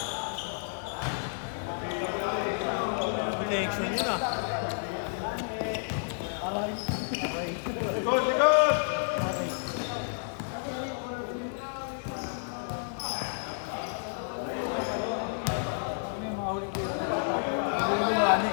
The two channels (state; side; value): silent; right; digital silence